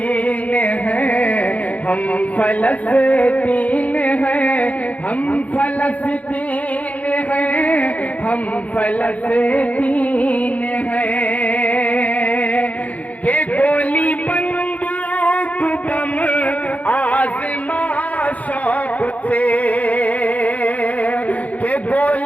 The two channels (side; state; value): right; late; 0.070 ms